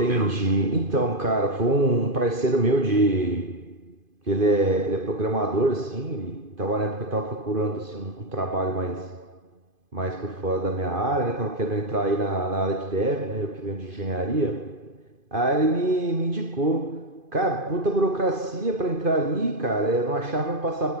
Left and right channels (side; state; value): left; late; 2.5 ms